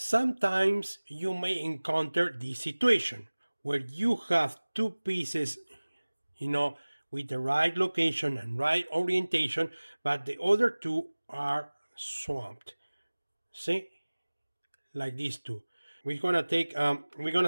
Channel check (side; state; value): both; inverted; correlation -1.00